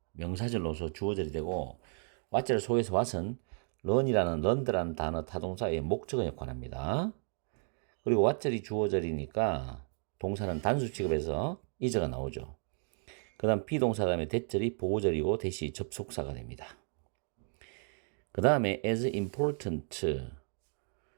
명사절로서 주어절이 되고 what절 속에서 what은 learn이라는 단어 타동사의 목적어 역할을 합니다. 그리고 what절이 주어절이니까 동사는 단수 취급해서 is가 나오죠. 그 다음 비동사 다음에 that절이 보호절이고 that이 접속사가 됩니다. 그 다음에 as important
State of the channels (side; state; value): left; silent; 55 dB below the other